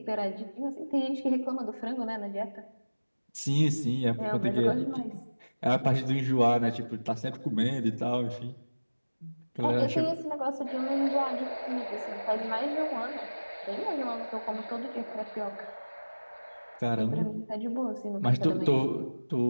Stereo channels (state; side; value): inverted; both; correlation -1.00